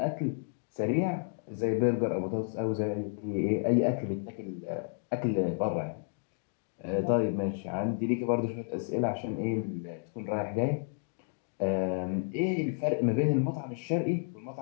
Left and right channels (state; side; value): silent; right; digital silence